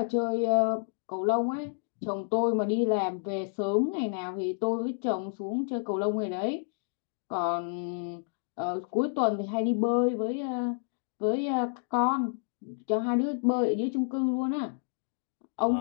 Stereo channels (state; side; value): silent; right; digital silence